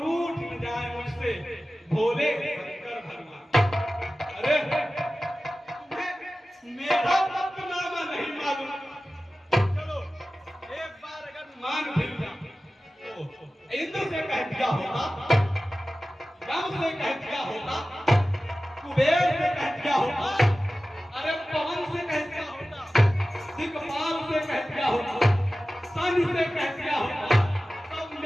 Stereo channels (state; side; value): normal; both; correlation 0.96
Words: न जाए मुझसे भोले शंकर भगवान। अरे तुम्हें मेरा पत्रनामा नहीं मालूम? चलो एक बार अगर मान भी इंद्र से कह दिया होता, राम से कह दिया होता, कुबेर से कह दिया होता, अरे पवन से कह दिया होता, दिक्पाल से कह दिया होता, सन से कह दिया होता, सब